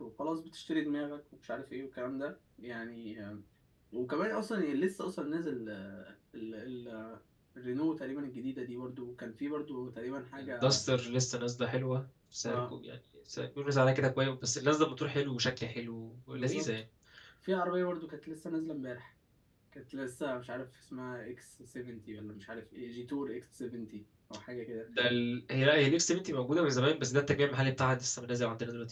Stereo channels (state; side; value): identical; both; correlation 1.00